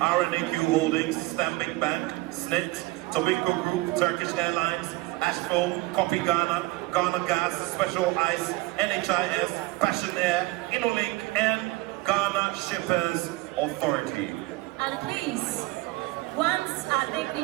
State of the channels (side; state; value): left; quieter; 21.0 dB